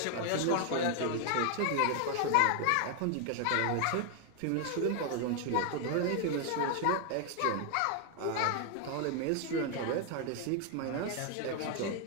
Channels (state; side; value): different; both; correlation 0.00